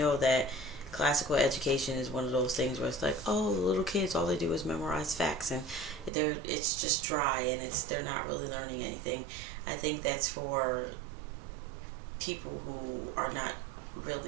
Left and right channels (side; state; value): left; drops out; at 6.1 s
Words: that classical education is one of those things where it's like, oh, the little kids, all they do is memorize facts and it's just dry and they're not really learning anything. I think that's for people who are not